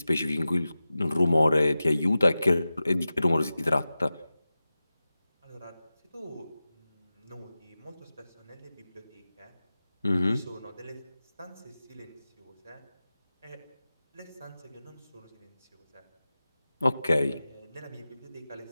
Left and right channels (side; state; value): both; inverted; correlation -0.95